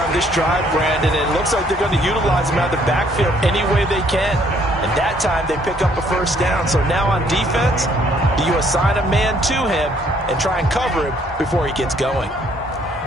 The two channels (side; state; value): both; normal; correlation 0.64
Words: on this drive, Brandon. It looks like they're going to utilize him out of the backfield any way they can. And that time they pick up a 1st down. So now on defense, do you assign a man to him and try and cover him before he gets going?